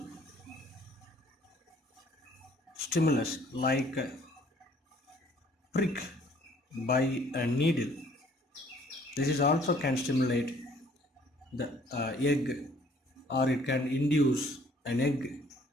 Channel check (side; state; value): both; normal; correlation 0.59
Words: stimulus like prick by a needle. This is also can stimulate the egg, or it can induce an egg